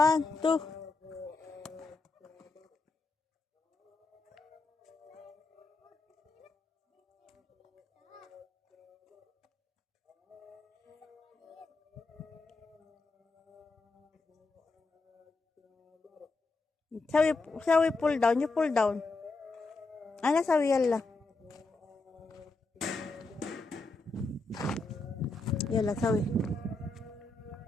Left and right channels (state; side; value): quieter; right; 3.4 dB